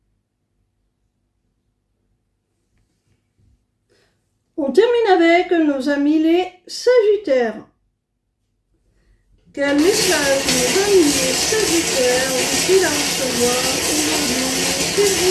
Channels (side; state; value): both; identical; correlation 1.00